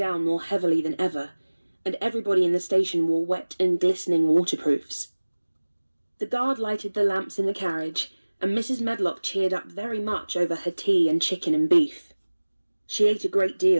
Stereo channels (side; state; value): both; inverted; correlation -1.00